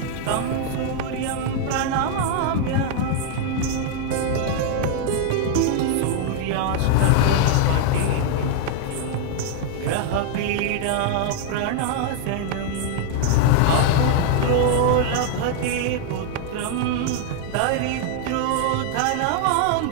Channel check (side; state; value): both; different; correlation 0.00